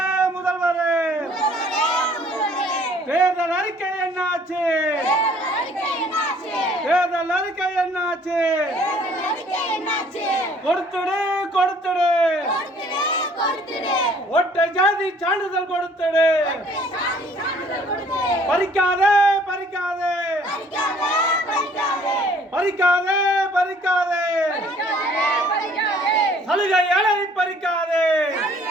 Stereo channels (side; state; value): both; normal; correlation 0.58